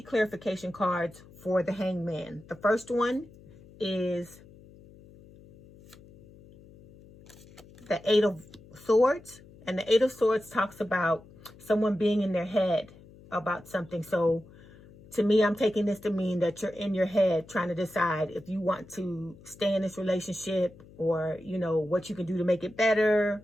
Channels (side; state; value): left; noise; hum, 22 dB below the sound